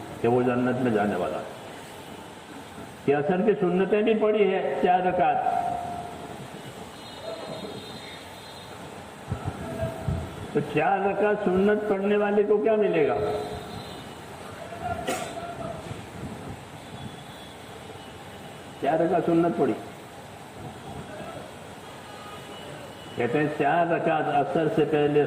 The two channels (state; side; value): identical; both; correlation 1.00